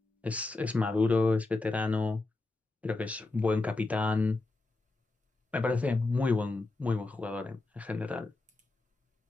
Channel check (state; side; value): quieter; right; 3.2 dB